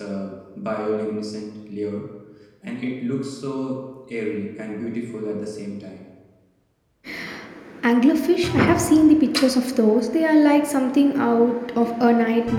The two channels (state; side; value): identical; both; correlation 1.00